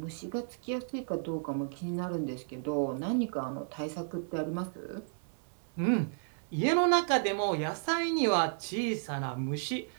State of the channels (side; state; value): left; silent; 56 dB below the other